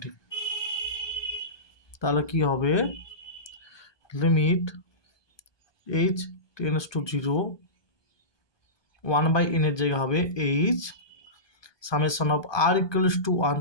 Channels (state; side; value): late; right; 1.2 ms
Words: তাহলে কি হবে, limit h tends to 0 1/n এর জায়গা হবে h summation of r equals to 1